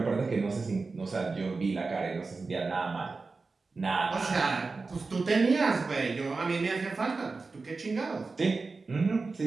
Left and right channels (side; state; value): left; quieter; 4.0 dB